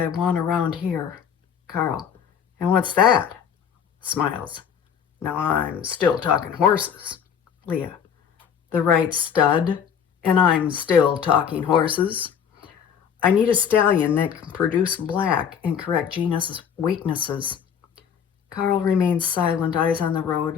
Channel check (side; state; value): right; quieter; 7.7 dB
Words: want around here. Carl, and what's that? Smiles. Now I'm still talking horses. Leah, the right stud, and I'm still talking horses. I need a stallion that can produce black and correct Gina's weaknesses. Carl remains silent, eyes on the